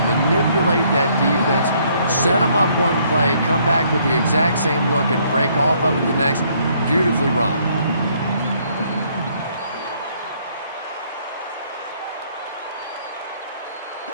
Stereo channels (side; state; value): both; inverted; correlation -0.66